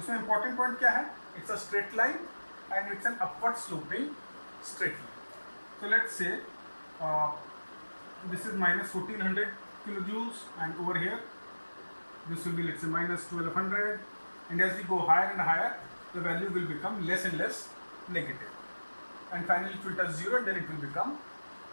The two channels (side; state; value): both; inverted; correlation -1.00